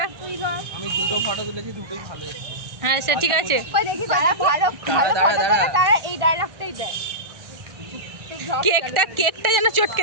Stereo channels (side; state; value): left; late; 1.6 ms